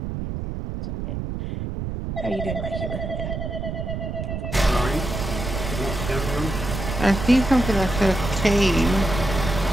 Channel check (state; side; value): noise; right; rumble, 5 dB below the sound